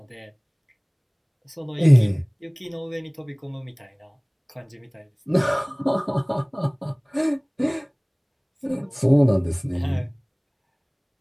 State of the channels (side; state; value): both; identical; correlation 1.00